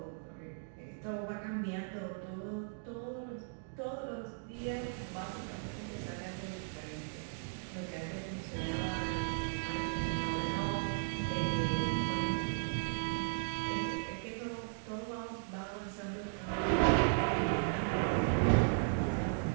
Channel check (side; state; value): left; silent; digital silence